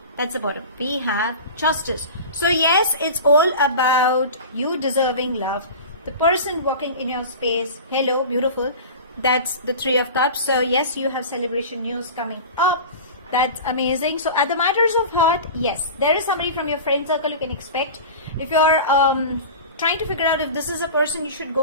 That's the bottom. We have justice. So yes, it's all about you deserving love. The person walking in your space, hello, beautiful. That's the 3 of Cups. So yes, you have celebration news coming up. That's amazing. So at the matters of heart, yes, there is somebody from your friend circle you can expect. If you're trying to figure out if this is a person you should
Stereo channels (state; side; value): inverted; both; correlation -0.33